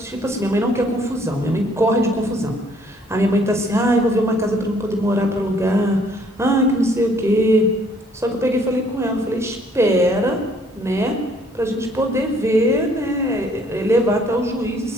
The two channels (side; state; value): both; normal; correlation 0.62